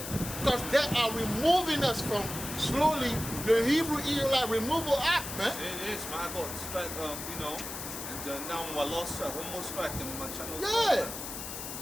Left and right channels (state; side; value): noise; left; hiss, 8 dB below the sound